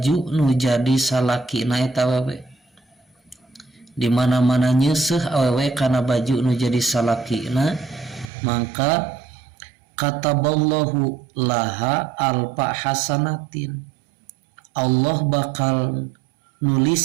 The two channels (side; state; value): left; drops out; at 8.3 s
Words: nu jadi salakina eta awewe. Di mana-mana nyeuseuf awewe kana baju nu jadi salakina, maka kataballahu laha alfa hasanatin, Allah bakal